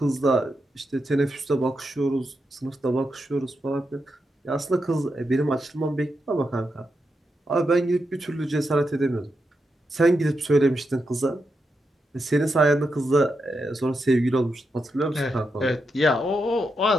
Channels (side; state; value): both; normal; correlation 0.85